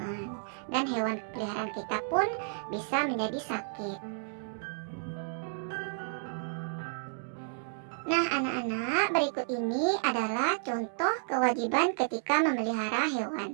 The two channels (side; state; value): left; silent; digital silence